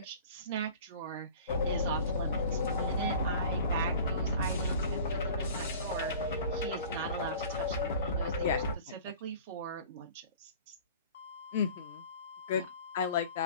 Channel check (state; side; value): inverted; both; correlation -0.43